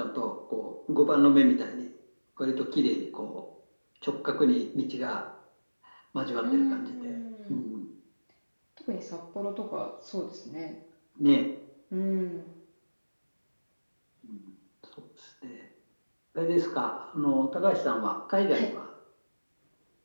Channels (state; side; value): inverted; both; correlation -1.00